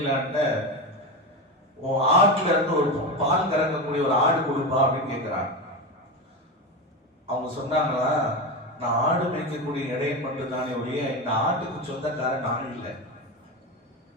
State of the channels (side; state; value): both; normal; correlation 0.19